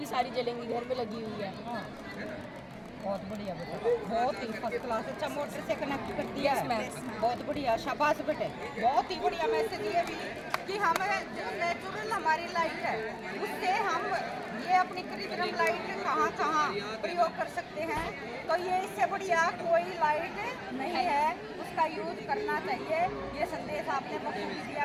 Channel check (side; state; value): both; identical; correlation 1.00